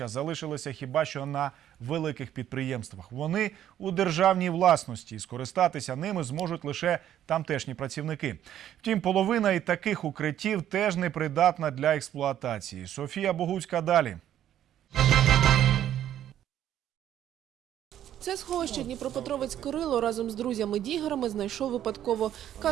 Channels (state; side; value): quieter; left; 11.2 dB